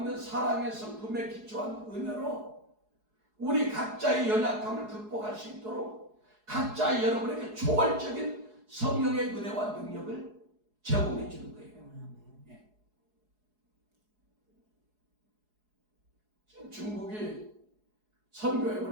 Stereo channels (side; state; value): left; late; 4.7 ms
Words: 사랑의 성품에 기초한 은혜로 우리 각자의 연약함을 극복할 수 있도록 각자 여러분에게 초월적인 성령의 은혜와 능력을 제공해 주는 거예요. 지금 중국이 선교역을